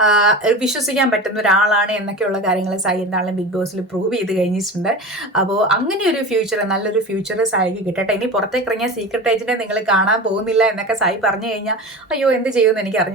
വിശ്വസിക്കാൻ പറ്റുന്ന ഒരാളാണ് എന്നൊക്കെയുള്ള കാര്യങ്ങൾ സായി എന്താണെങ്കിലും ബിഗ് ബോസിൽ പ്രൂവ് ചെയ്ത് കഴിഞ്ഞിട്ടുണ്ട്. അപ്പോൾ അങ്ങനെ ഒരു ഫ്യൂച്ചർ, നല്ലൊരു ഫ്യൂച്ചർ സായിക്ക് കിട്ടട്ടെ. ഇനി പുറത്തേക്ക് ഇറങ്ങിയ സീക്രട്ട് ഏജന്റിനെ നിങ്ങൾ കാണാൻ പോകുന്നില്ല എന്നൊക്കെ സായി പറഞ്ഞു കഴിഞ്ഞാൽ അയ്യോ എന്ത് ചെയ്യുമെന്ന് എനിക്ക്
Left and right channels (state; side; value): normal; both; correlation 0.30